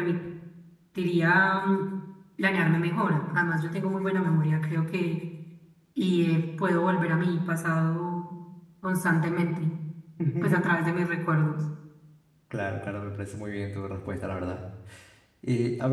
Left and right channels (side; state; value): both; identical; correlation 1.00